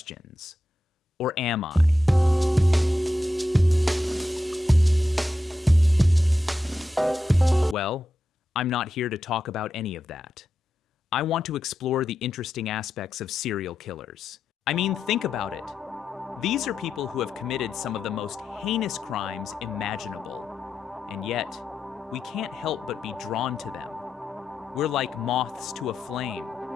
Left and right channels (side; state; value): both; normal; correlation 0.88